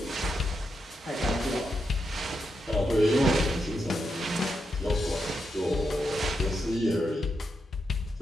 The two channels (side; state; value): both; normal; correlation 0.84